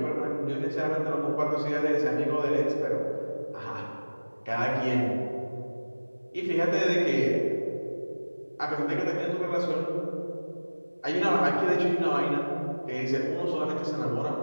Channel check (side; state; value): both; inverted; correlation -1.00